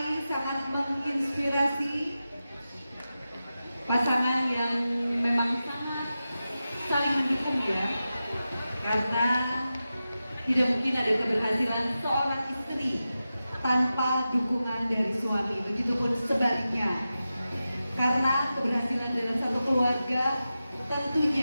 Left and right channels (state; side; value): inverted; both; correlation -0.92